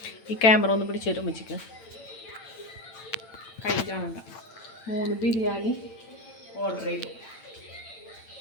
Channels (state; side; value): late; right; 8.9 ms